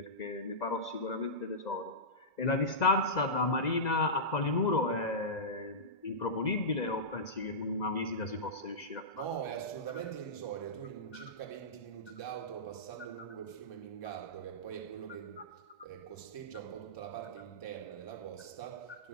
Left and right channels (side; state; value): right; late; 2.0 ms